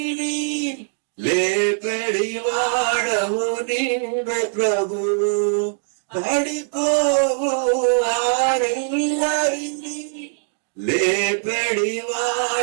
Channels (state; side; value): silent; left; digital silence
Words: లేపెడి వాడవు నీవే ప్రభువు. పడిపోవు వారెల్లరినీ లేపెడి